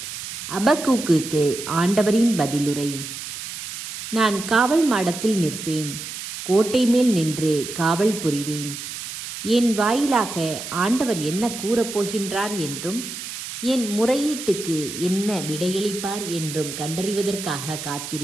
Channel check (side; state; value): right; noise; hiss, 9 dB below the sound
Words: அபக்கூக்குக்கு ஆண்டவரின் பதிலுரை. நான் காவல் மாடத்தில் நிற்பேன், கோட்டை மேல் நின்று காவல் புரிவேன். என் வாயிலாக ஆண்டவர் என்ன கூறப்போகின்றார் என்றும் என் முறையீட்டுக்கு என்ன விடையளிப்பார் என்றும் கண்டறிவதற்காக